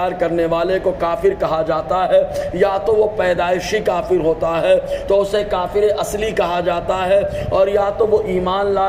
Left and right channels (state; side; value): identical; both; correlation 1.00